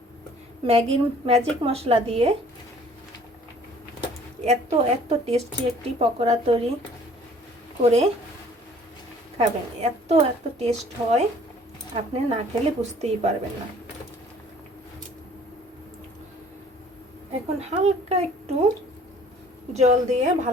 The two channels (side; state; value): both; normal; correlation 0.54